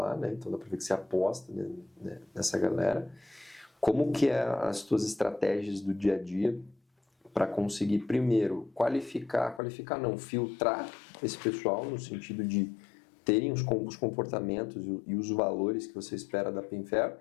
né? Então dá para ver que você aposta, né, nessa galera. Como que é as tuas estratégias do dia a dia para conseguir, primeiro, filtrar esse pessoal no sentido de terem os comportamentos e os valores que você espera da Pinfair,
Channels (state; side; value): drops out; right; at 9.6 s